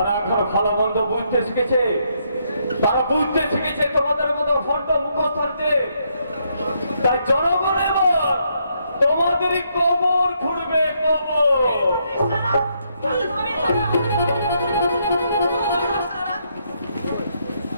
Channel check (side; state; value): both; inverted; correlation -0.75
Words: এখন ভালো মন্দ বুঝতে শিখেছে, তারা বুঝতে শিখেছে তোমাদের মতো ফন্ট মুখস্থানতে। তাই জনগণ এবার তোমাদেরই কবর খুঁড়বে, কবর।